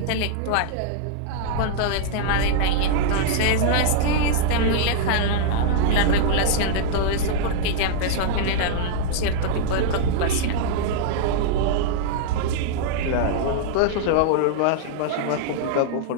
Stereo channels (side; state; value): both; different; correlation -0.01